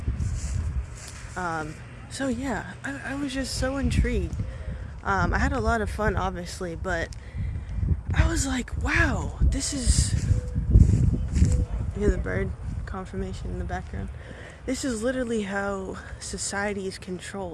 So yeah, I was just so intrigued. I had a lot of fun, obviously, but I was like, wow, this is... You hear the bird confirmation in the background? This is literally how society is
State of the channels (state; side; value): identical; both; correlation 1.00